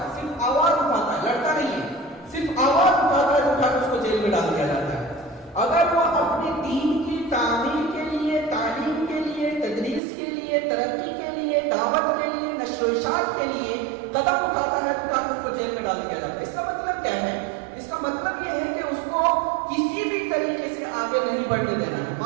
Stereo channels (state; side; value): drops out; left; at 10.0 s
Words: صرف آواز اٹھاتا ہے، لڑتا نہیں ہے، صرف آواز اٹھاتا ہے تو اٹھا کر اس کو جیل میں ڈال دیا جاتا ہے. اگر وہ اپنے دین کی تعمیر کے لیے، تعلیم کے لیے، تدریس کے لیے، ترقی کے لیے، دعوت کے لیے، نشر و اشاعت کے لیے قدم اٹھاتا ہے تو اس کو جیل میں ڈال دیا جاتا ہے. اس کا مطلب کیا ہے؟ اس کا مطلب یہ ہے کہ اس کو کسی بھی طریقے سے آگے نہیں بڑھنے دینا ہے.